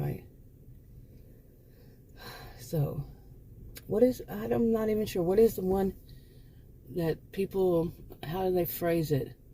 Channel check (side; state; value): both; identical; correlation 1.00